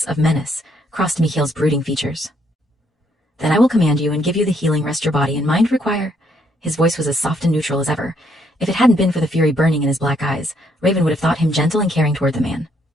of menace, crossed Mikhail's brooding features. Then I will command you and give you the healing rest your body and mind require. His voice was as soft and neutral as ever. If it hadn't been for the fury burning in his black eyes, Raven would have thought him gentle and caring toward the man.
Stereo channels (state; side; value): normal; both; correlation 0.71